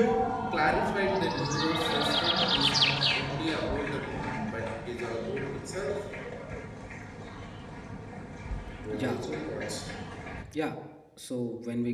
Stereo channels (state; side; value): identical; both; correlation 1.00